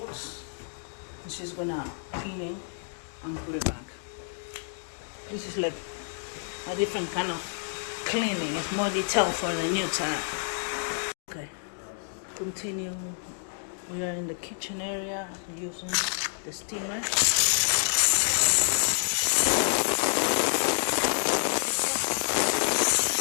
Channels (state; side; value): silent; right; digital silence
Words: and she's gonna clean it and put it back. This is like a different kind of cleaning. It's more detailed for the new tenant. Okay, continue. We are in the kitchen area using the steamer.